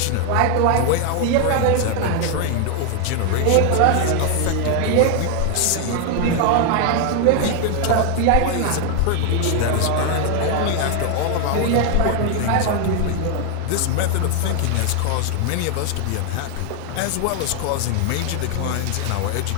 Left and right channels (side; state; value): both; different; correlation 0.00